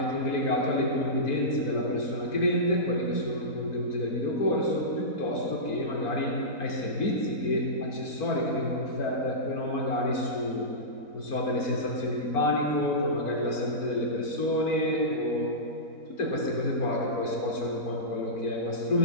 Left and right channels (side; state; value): right; late; 4.4 ms